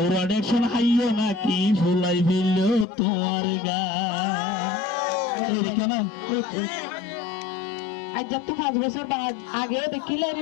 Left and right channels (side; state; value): right; drops out; at 2.9 s